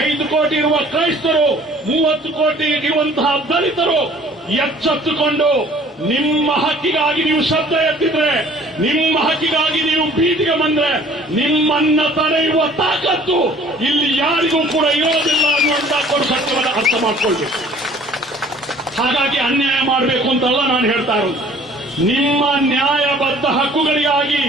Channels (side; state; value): both; normal; correlation 0.52